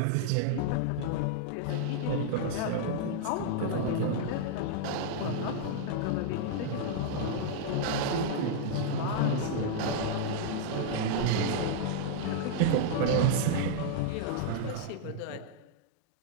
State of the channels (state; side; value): different; both; correlation -0.01